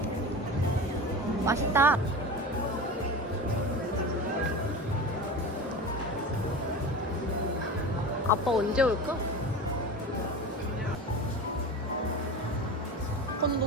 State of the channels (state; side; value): normal; both; correlation 0.30